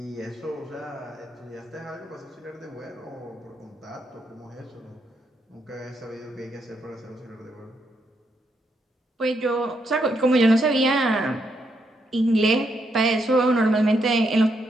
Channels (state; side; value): normal; both; correlation 0.78